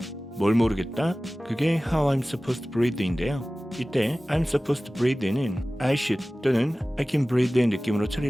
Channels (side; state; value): both; normal; correlation 0.97